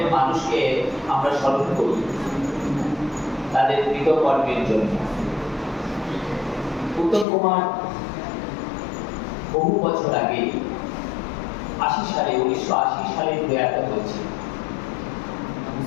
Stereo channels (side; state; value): right; drops out; at 7.2 s